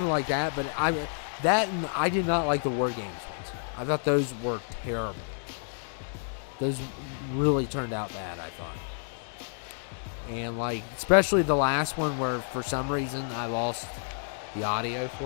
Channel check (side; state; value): right; silent; digital silence